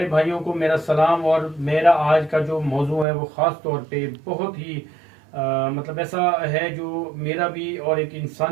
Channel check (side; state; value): left; drops out; at 3.1 s